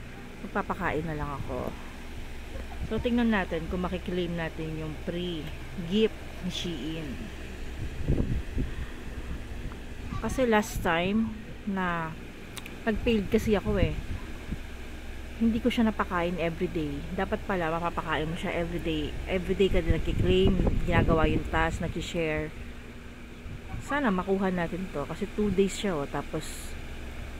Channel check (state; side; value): identical; both; correlation 1.00